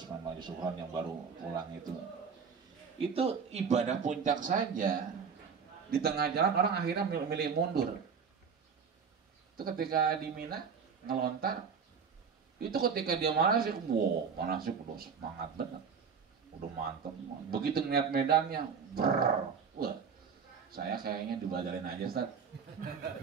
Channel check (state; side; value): quieter; left; 6.2 dB